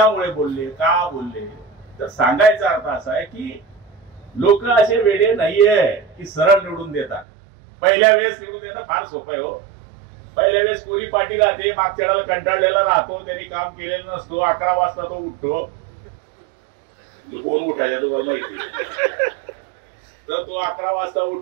बोलले, का बोलले. तर सांगायचा अर्थ असा आहे की लोक असे वेडे नाहीये की सरळ निवडून देतात. पहिल्या वेळेस निवडून देणं फार सोपं आहे हो. पहिल्या वेळेस कोरी पाटील राहते, मागच्या वेळेला कंटाळलेला राहतो, त्यांनी काम केलेलं नसतो, 11 वाजता तो उठतो. कोण उठायचा तुम्हाला माहिती? तर तो 11 वाजता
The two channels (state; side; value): drops out; left; at 7.2 s